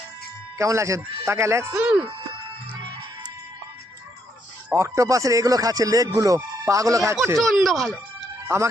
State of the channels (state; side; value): normal; both; correlation 0.74